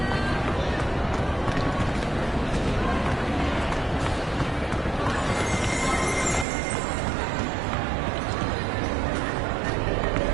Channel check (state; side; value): drops out; left; at 6.5 s